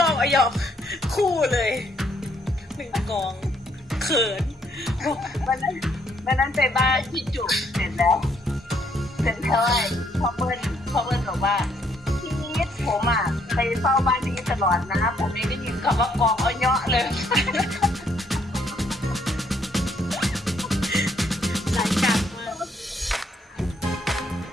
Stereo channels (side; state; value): both; normal; correlation 0.70